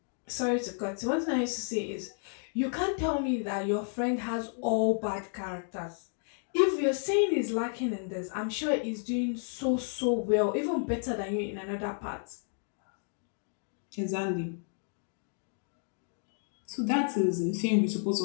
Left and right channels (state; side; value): silent; right; 57 dB below the other